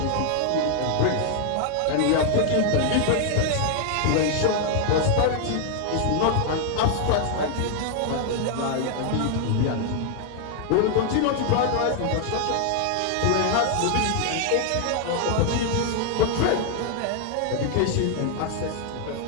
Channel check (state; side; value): different; both; correlation 0.00